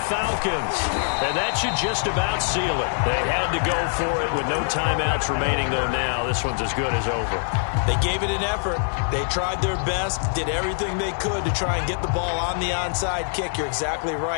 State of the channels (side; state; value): right; silent; digital silence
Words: Falcons. And that should just about seal it. They had to go for it with no timeouts remaining, though now this one's as good as over. They gave it an effort. They tried their best, did everything they could to try and get the ball on the onside kick. You're exactly